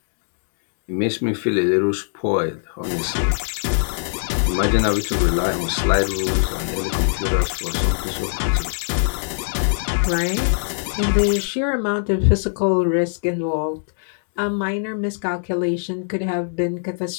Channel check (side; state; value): right; silent; digital silence